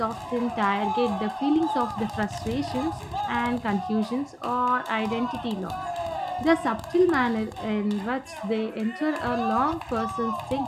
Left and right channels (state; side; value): identical; both; correlation 1.00